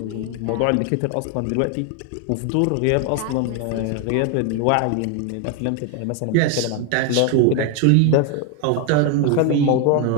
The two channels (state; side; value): different; both; correlation 0.01